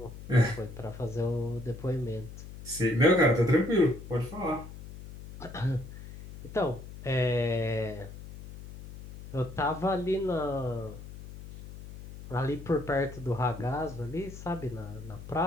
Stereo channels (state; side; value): noise; left; hum, 13 dB below the sound